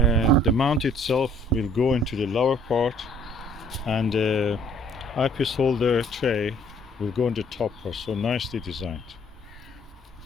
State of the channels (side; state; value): both; normal; correlation 0.59